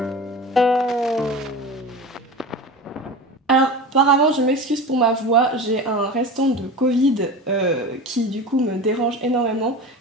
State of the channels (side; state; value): both; normal; correlation 0.31